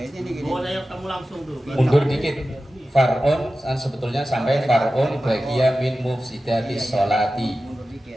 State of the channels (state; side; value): normal; both; correlation 0.94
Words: nih gini. Kamu langsung tuh. Mundur dikit. Far'un sebetulnya sampai far'un bagiya min mufsidati sholati. Mundur dikit.